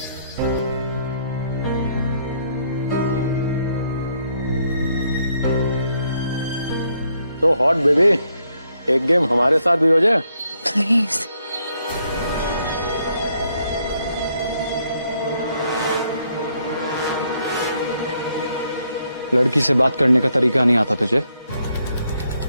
तो हॉट बेबी, एक गेम हमारे साथ भी हो जाए। प्लीज। लड़की से बात करने का तरीका नहीं आता तुझे?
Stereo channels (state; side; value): inverted; both; correlation -0.73